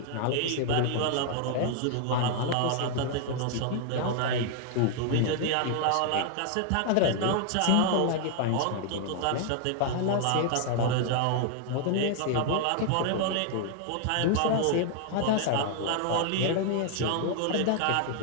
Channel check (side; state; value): both; different; correlation 0.00